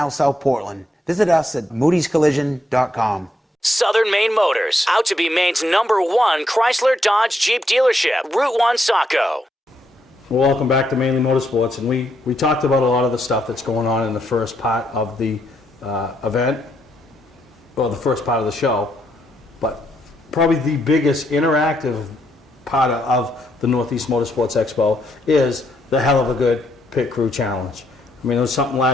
South Portland. Visit us at moodyscollision.com. Southern Maine Motors, out to be Maine's #1 Chrysler Dodge Jeep dealership, Route 1 Saco. Well, welcome back to Mainly Motorsports, and we talked about a lot of the stuff that's going on in the first part of the event, or the first part of the show, but probably the biggest interactive part of the Northeast Motorsports Expo is the hell of a good Pit Crew Challenge. I mean, it was something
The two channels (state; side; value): normal; both; correlation 0.77